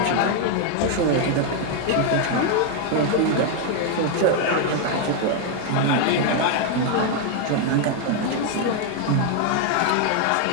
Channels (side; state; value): both; different; correlation 0.00